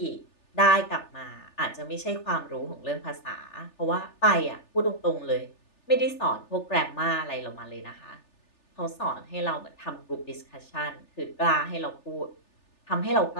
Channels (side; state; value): right; late; 3.4 ms